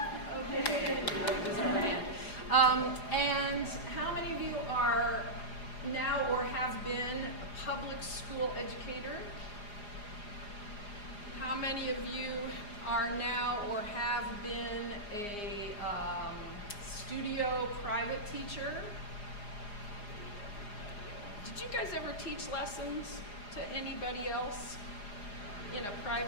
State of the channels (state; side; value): late; right; 4.9 ms